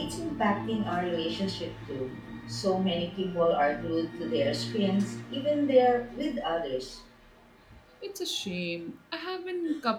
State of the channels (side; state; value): both; identical; correlation 1.00